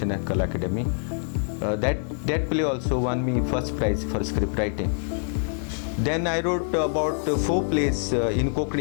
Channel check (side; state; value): right; silent; 59 dB below the other